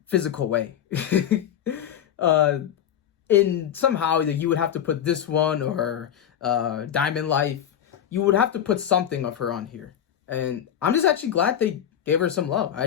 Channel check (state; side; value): quieter; right; 9.8 dB